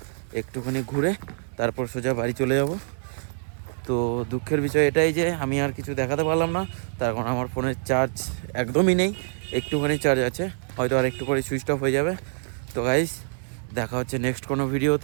একটুখানি ঘুরে তারপর সোজা বাড়ি চলে যাব। তো দুঃখের বিষয় এটাই যে আমি আর কিছু দেখাতে পারলাম না, তার কারণ আমার ফোনের চার্জ একদমই নেই, একটুখানি চার্জ আছে, হয়তো আর একটু পরে সুইচ অফ হয়ে যাবে। তো গাইস দেখা হচ্ছে নেক্সট কোনো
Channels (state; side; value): silent; left; digital silence